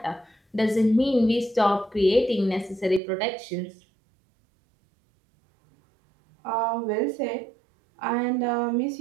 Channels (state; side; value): drops out; left; at 3.0 s